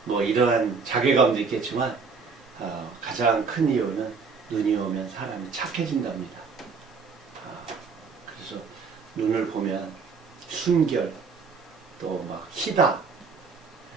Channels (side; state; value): left; quieter; 5.0 dB